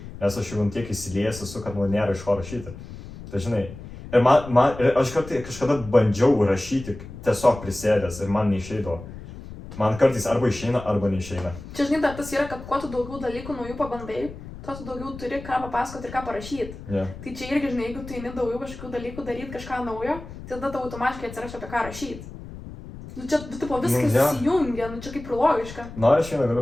nes aš jau tiek įsiliejęs esu, kad man nėra iš ko rašyti. Tai žinai, ir aš kažkada bandžiau rašyti tiesiog prisėdęs ir man neišeidavo. Man kartais arba išeina, arba neišeina. Čia, žinai, tas yra, kad kuo tu daugiau dalykų naujų pabandai, tuo tu daugiau turi ką papasakoti ir ką parašyti. Yeah. Tai čia irgi, žinai, jeigu tu eini daugiau kažkokių dalykų daryti, kažką naujo, tai tada tau automatiškai atsiras apie ką rašyti. Čia, viskas įsijungia, čia kaip ir logiška. Aš vieną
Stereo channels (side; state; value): left; noise; rumble, 13 dB below the sound